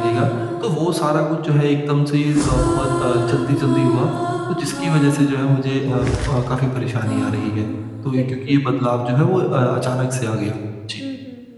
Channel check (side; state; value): both; identical; correlation 1.00